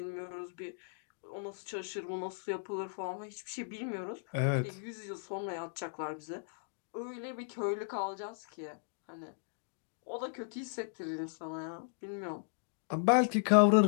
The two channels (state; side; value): silent; right; digital silence